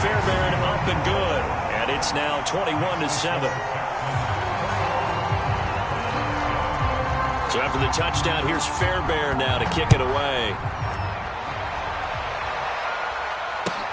up and good. And it's now 21-7. So after the touchdown, here's Fairbairn now to kick it away.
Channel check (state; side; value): identical; both; correlation 1.00